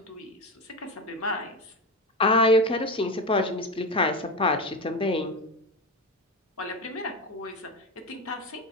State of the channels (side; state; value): both; normal; correlation 0.20